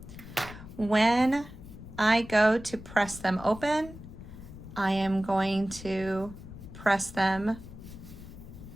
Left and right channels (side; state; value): left; noise; rumble, 14 dB below the sound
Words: When I go to press them open, I am going to press them